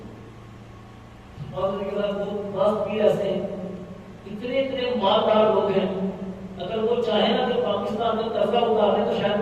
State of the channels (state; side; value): identical; both; correlation 1.00